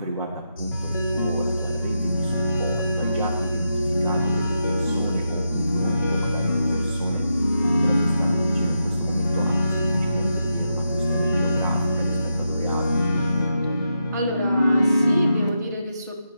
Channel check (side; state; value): both; inverted; correlation -0.85